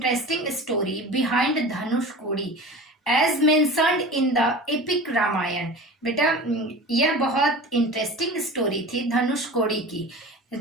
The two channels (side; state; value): both; normal; correlation 0.35